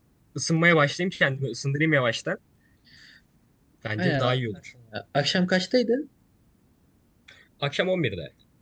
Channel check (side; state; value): both; identical; correlation 1.00